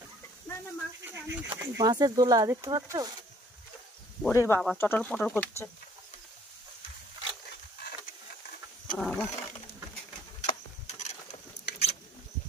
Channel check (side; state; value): both; normal; correlation 0.59